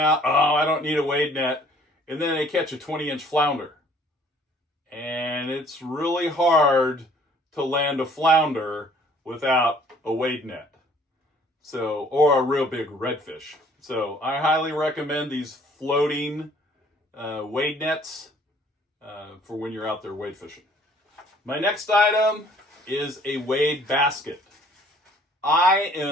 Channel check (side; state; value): both; normal; correlation 0.57